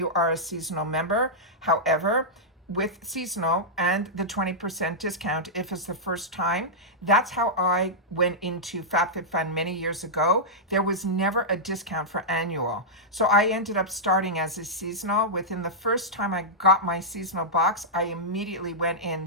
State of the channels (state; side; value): normal; both; correlation -0.10